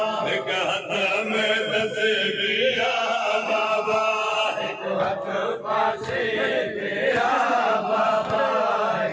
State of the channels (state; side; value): identical; both; correlation 1.00